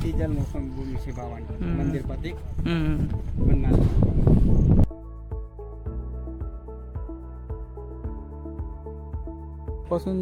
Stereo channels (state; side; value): identical; both; correlation 1.00